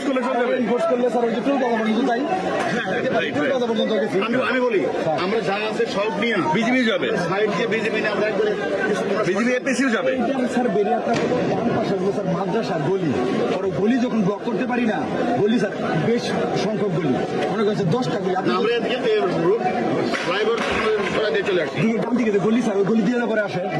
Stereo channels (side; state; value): both; identical; correlation 1.00